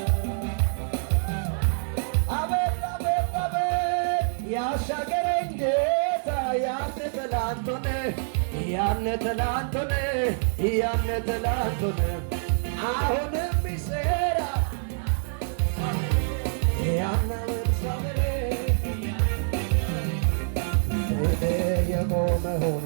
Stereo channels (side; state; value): left; silent; digital silence